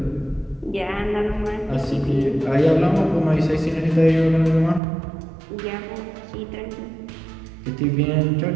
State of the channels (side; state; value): left; drops out; at 4.8 s